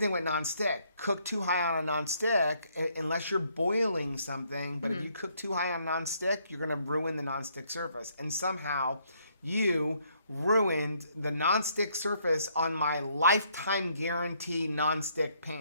with non-stick. Cook too high on a non-stick, unless you're boiling something. But if you cook too high on non-stick, you're going to ruin the non-stick surface. And somehow you ruined the non-stick surface on my lifetime guarantee non-stick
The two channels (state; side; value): inverted; both; correlation -0.69